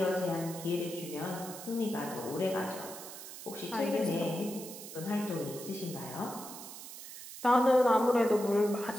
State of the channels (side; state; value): right; noise; hiss, 12 dB below the sound